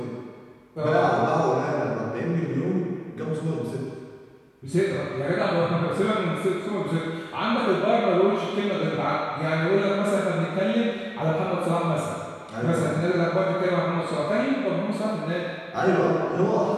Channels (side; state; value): both; identical; correlation 1.00